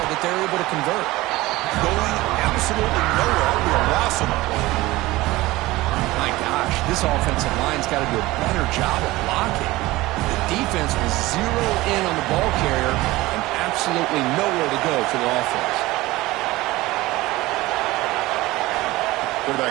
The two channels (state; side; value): quieter; left; 19.1 dB